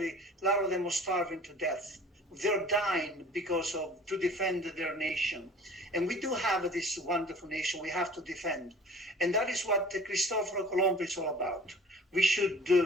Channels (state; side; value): normal; both; correlation 0.46